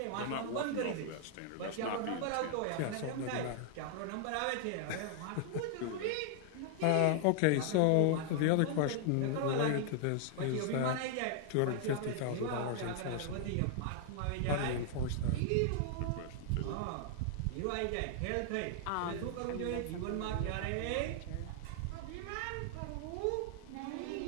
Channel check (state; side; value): different; both; correlation 0.00